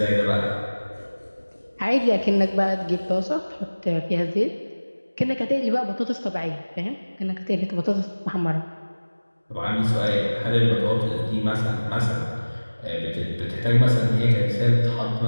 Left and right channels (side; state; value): both; inverted; correlation -1.00